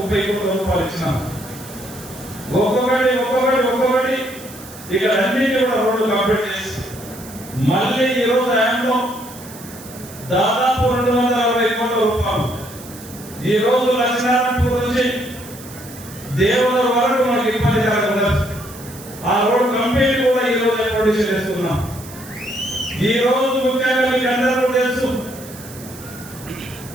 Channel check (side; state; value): right; noise; hiss, 17 dB below the sound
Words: కోట్ల రూపాయలు ఇచ్చినాం. ఒక్కొక్కటి ఇక్కడ అన్నింటి కూడా రోడ్లు కంప్లీట్ చేసి మళ్ళీ ఈ రోజు ఆయనలో ఈ రోజు లక్ష్మీనారాయణపూర్ నుంచి దేవుల వరకు మనకి ఇబ్బంది కలగకుండా ఆ రోడ్ కంప్లీట్ కూడా ఈ రోజు ప్రొడ్యూస్ చేస్తున్నాం. ఈ రోజు ముఖ్యంగా మీకు అందరూ తెలుసు